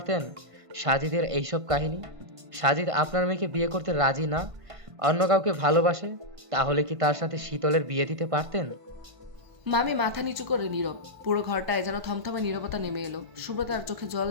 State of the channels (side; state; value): left; late; 1.5 ms